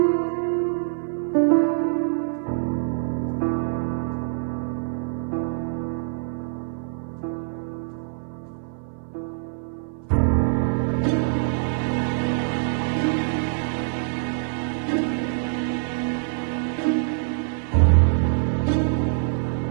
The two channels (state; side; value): silent; left; 62 dB below the other